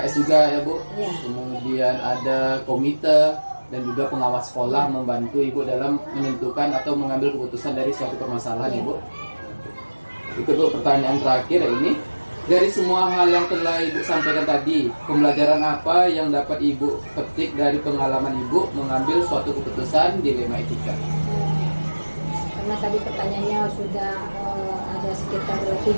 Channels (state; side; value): inverted; both; correlation -1.00